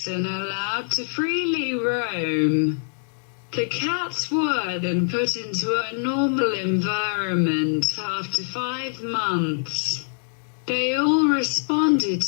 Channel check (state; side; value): silent; right; digital silence